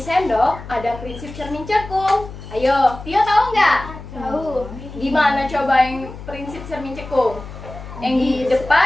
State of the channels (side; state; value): left; noise; hum, 14 dB below the sound